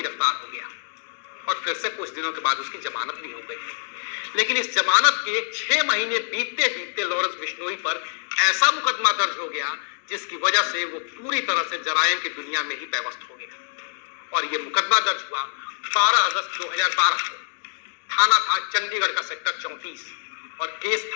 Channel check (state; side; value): silent; right; digital silence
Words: हो गया और फिर से कुछ दिनों के बाद उसकी जमानत भी हो गई। लेकिन इस जमानत के 6 महीने बीतते बीतते लॉरेंस बिश्नोई पर ऐसा मुकदमा दर्ज हो गया जिसकी वजह से वो पूरी तरह से जराइम की दुनिया में ही पैवस्त हो गया। और ये मुकदमा दर्ज हुआ 12 अगस्त 2012 को। थाना था चंडीगढ़ का सेक्टर 34 और केस